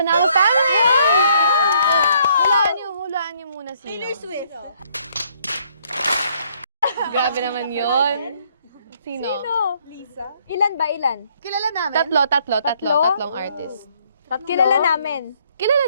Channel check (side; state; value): both; inverted; correlation -0.67